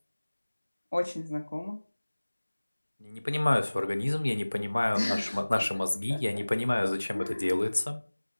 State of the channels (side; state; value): both; inverted; correlation -1.00